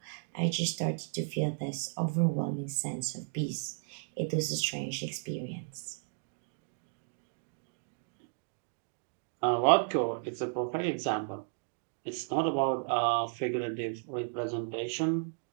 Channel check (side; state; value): left; silent; digital silence